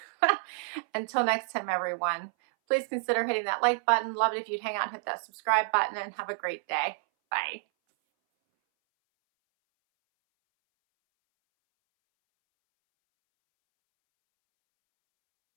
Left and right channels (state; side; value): silent; left; 59 dB below the other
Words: Until next time, everyone, please consider hitting that like button. Love it if you'd hang out and hit that subscribe button, and have a great day. Bye.